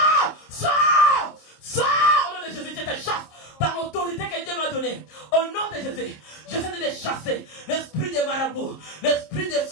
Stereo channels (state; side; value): late; right; 26 ms